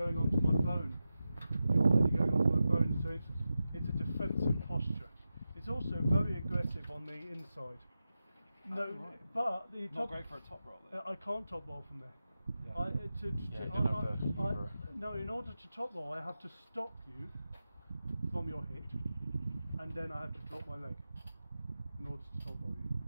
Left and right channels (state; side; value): inverted; both; correlation -0.92